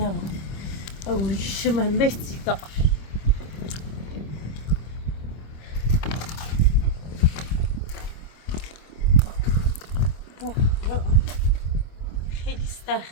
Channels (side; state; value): right; late; 25 ms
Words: او ریشم همه سیگار. خیلی